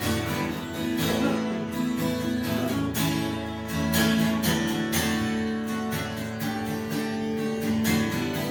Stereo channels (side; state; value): both; identical; correlation 1.00